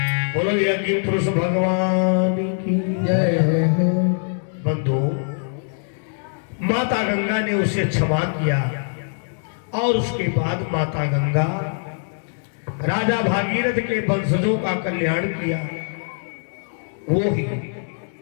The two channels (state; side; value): silent; right; 64 dB below the other